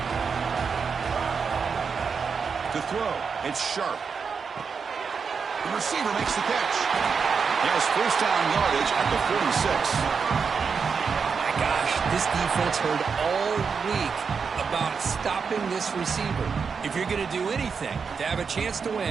To throw, it's Sharp. The receiver makes the catch. He has first down yardage at the 46. My gosh, this defense heard all week about stopping this receiver. If you're going to do anything to have a chance to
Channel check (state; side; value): quieter; left; 5.7 dB